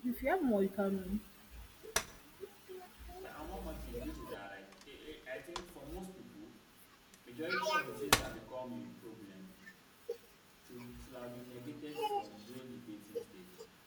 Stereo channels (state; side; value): identical; both; correlation 1.00